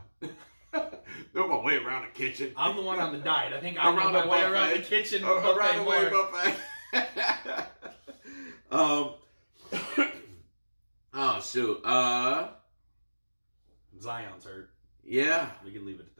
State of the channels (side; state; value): both; inverted; correlation -1.00